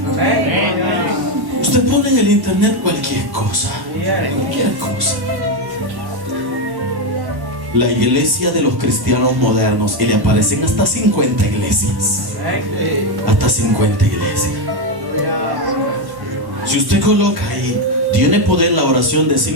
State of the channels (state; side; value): late; left; 1.1 ms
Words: Usted pone en el internet cualquier cosa. Cualquier cosa. La iglesia de los cristianos modernos, y le aparecen hasta 50 iglesias. Hasta 50 iglesias. Si usted coloca ahí, tiene poder la oración de